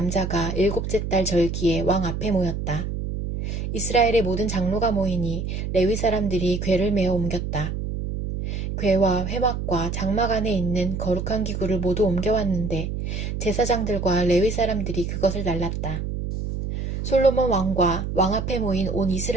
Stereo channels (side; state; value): right; noise; hum, 4 dB below the sound